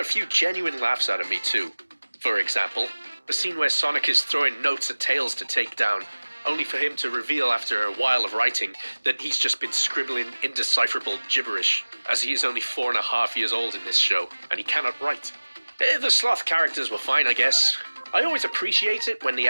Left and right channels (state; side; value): inverted; both; correlation -1.00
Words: few genuine laughs out of me too. For example, the scene where Sonic is throwing notes at Tails to take down, only for him to reveal after a while of writing that he's just been scribbling indecipherable gibberish, as he is only 4.5 years old in this show, and he cannot write. The sloth characters were fine, I guess. I always appreciate it when the